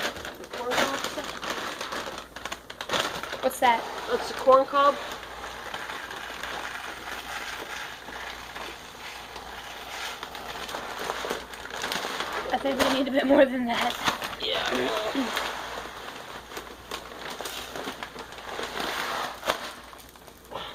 What's that? That's the corn cob. I think we need a bit more than that. Yeah.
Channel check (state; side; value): identical; both; correlation 1.00